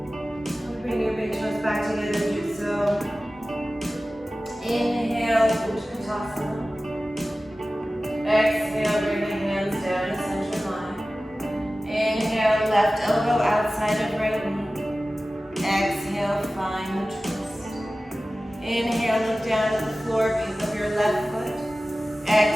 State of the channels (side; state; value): both; normal; correlation 0.96